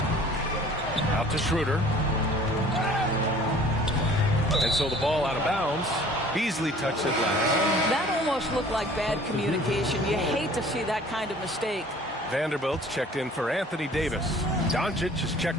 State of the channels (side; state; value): both; normal; correlation 0.50